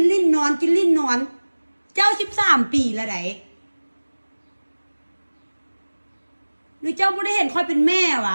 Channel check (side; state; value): both; inverted; correlation -1.00